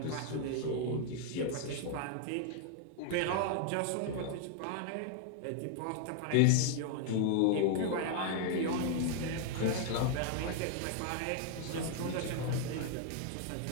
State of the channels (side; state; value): both; different; correlation 0.00